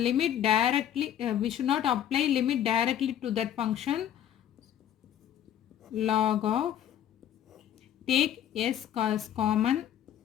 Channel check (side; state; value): right; quieter; 10.4 dB